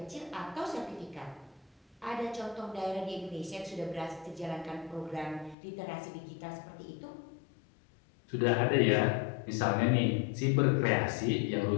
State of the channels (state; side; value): drops out; right; at 5.6 s